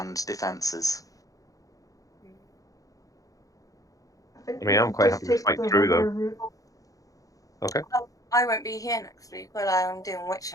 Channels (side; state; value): right; late; 0.17 ms